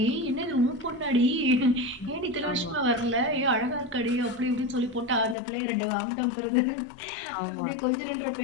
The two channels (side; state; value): right; drops out; at 5.4 s